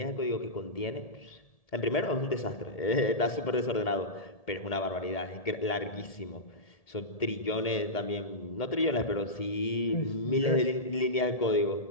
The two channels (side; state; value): right; late; 1.7 ms